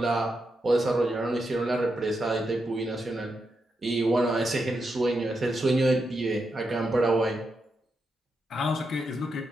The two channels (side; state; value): both; normal; correlation 0.85